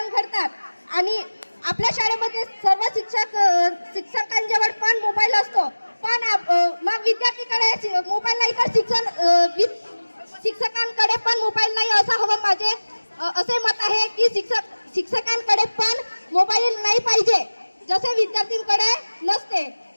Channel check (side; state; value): both; inverted; correlation -1.00